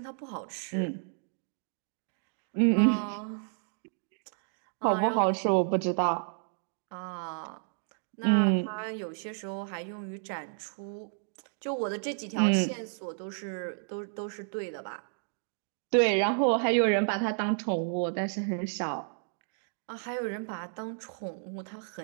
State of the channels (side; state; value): left; silent; digital silence